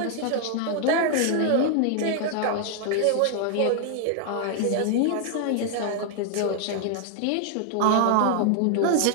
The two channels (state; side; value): different; both; correlation 0.00